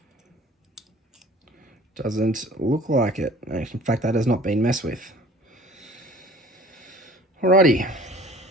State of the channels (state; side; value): normal; both; correlation 0.49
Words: Doesn't look like it. In fact, that has not been messed with. Alrighty.